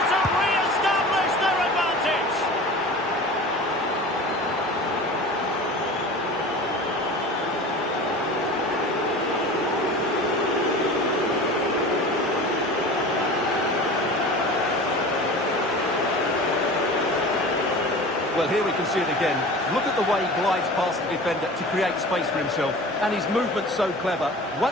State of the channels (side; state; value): both; normal; correlation 0.37